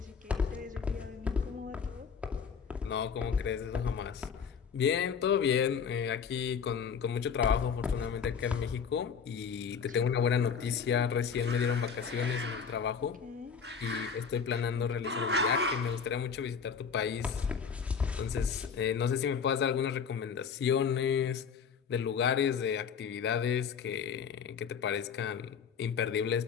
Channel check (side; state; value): right; quieter; 6.6 dB